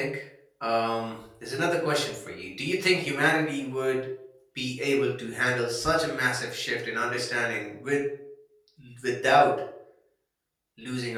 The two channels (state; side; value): identical; both; correlation 1.00